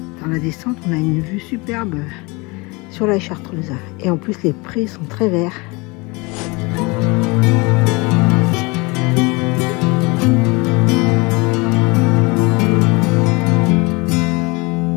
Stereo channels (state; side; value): quieter; right; 26.5 dB